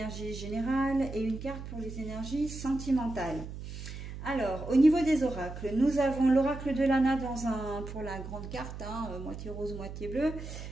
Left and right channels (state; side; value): noise; right; hum, 9 dB below the sound